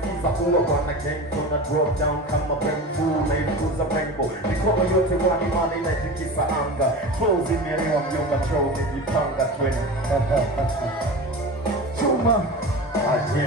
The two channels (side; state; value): both; normal; correlation 0.30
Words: ulo wana gang tuna drop down kama bamboo na ilikuza rainbow mikono yote wani mani na itikisa anga flows imeelewa mjomba troll nijipanga tweni Chuma